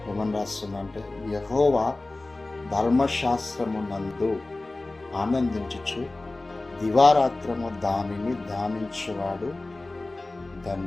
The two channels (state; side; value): quieter; right; 3.0 dB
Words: ఏమని రాస్తుందంటే, యెహోవా ధర్మశాస్త్రమునందు ఆనందించుచు దివారాత్రము దానిని ధ్యానించేవాడు